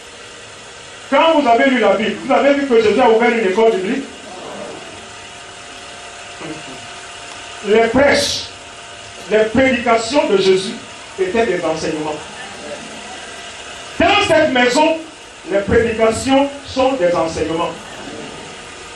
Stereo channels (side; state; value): both; identical; correlation 1.00